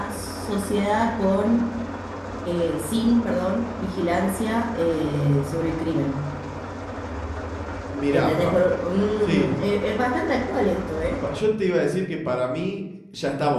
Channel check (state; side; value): identical; both; correlation 1.00